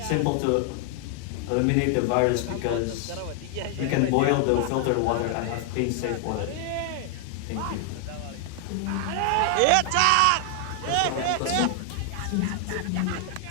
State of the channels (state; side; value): different; both; correlation 0.00